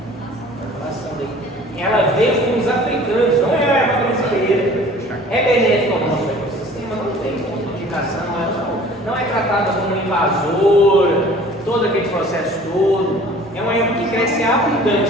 Ela veio com os africanos, não é a erva brasileira. É benéfica ao nosso ecossistema, não tem indicação, não é tratada como invasora, todo aquele processo todo. É uma erva que cresce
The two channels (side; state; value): both; normal; correlation 0.48